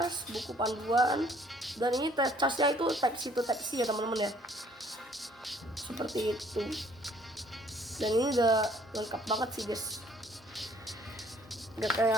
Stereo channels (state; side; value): normal; both; correlation 0.60